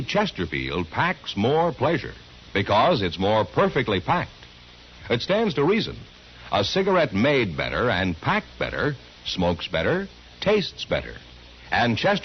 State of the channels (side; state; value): both; identical; correlation 1.00